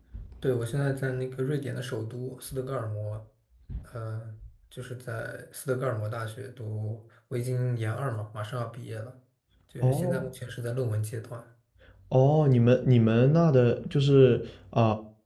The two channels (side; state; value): both; identical; correlation 1.00